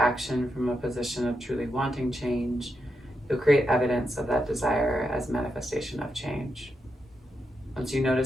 from a position of truly wanting change, you'll create evidence of that desire as manifestation of change. Once you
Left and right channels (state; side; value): normal; both; correlation 0.84